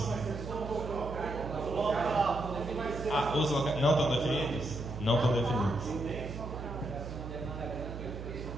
os locais não estão definidos? Não estão definidos.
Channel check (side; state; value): right; noise; hum, 9 dB below the sound